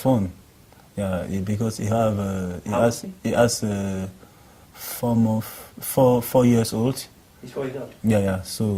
Yeah, because he has 4 years old. He's 4 years old. Yeah.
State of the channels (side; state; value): both; identical; correlation 1.00